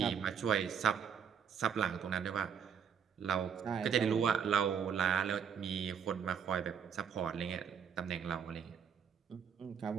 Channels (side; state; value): left; quieter; 7.5 dB